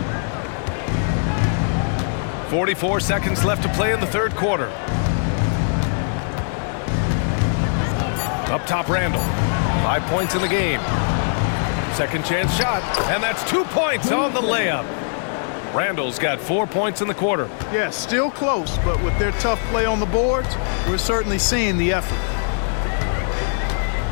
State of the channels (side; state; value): right; silent; digital silence